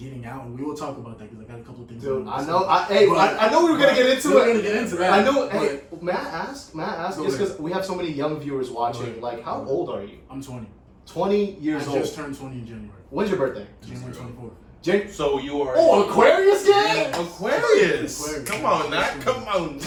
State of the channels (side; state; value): both; identical; correlation 1.00